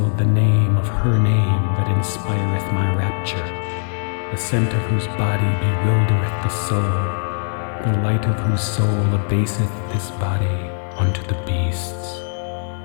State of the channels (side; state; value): right; silent; 60 dB below the other